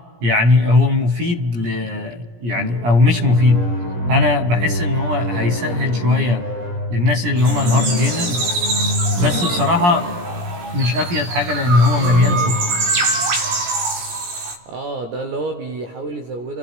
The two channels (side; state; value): left; late; 17 ms